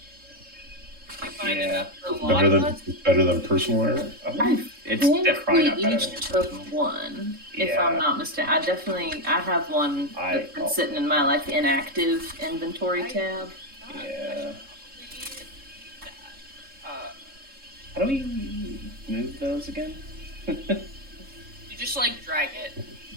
You find Yeah. enough for a lot better of than us? better than personal armor? It's I think definitely we not better each than took yours. one, if Yeah. I'm not mistaken. I have one that's been sitting in my like inactive inventory tab. Yeah. Uh, How do we move those again? you just like drag it.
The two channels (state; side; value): late; left; 3.7 ms